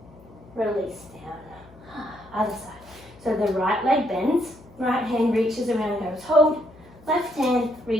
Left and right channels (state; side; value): noise; left; hum, 23 dB below the sound